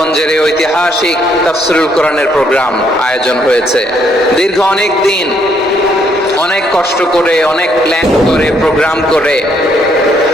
এই ঐতিহাসিক তাফসীরুল কোরআনের প্রোগ্রাম আয়োজন হয়েছে। দীর্ঘ অনেক দিন, অনেক কষ্ট করে, অনেক প্ল্যান করে, প্রোগ্রাম করে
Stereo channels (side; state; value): both; normal; correlation 0.70